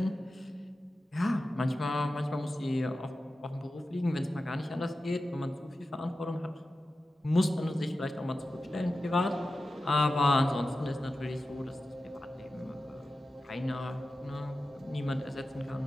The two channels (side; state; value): both; normal; correlation 0.93